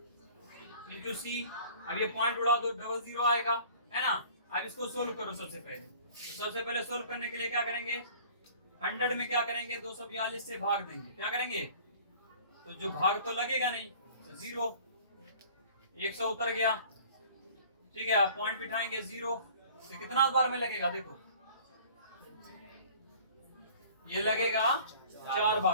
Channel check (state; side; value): inverted; both; correlation -0.48